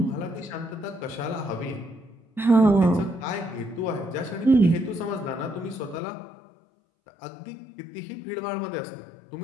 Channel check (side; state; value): right; drops out; at 6.0 s